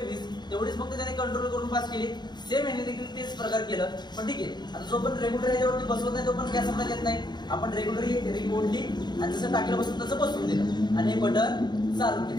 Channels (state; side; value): late; right; 0.21 ms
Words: तेवढीच फक्त त्याने कंट्रोल करून पास केली. सेम याने देखील तेच प्रकार केलं. पण ठीक आहे, आता जो पण रेग्युलर ह्याच्यावरती बसवत नाही तो पण गॅस सप्लाय देत नाही. आपण रेग्युलर रिंग ओढली आणि जसं टाकीला बसून तसं बसवून दिलं आणि हे बटन चालू